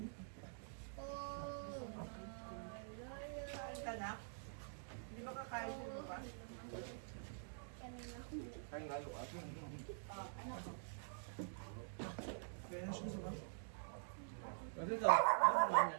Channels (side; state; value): left; silent; digital silence